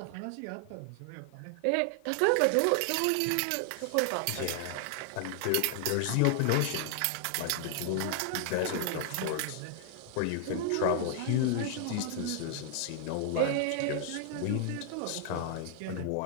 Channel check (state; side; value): different; both; correlation 0.00